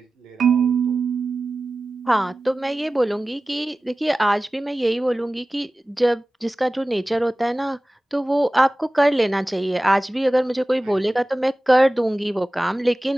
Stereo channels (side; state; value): both; normal; correlation 0.96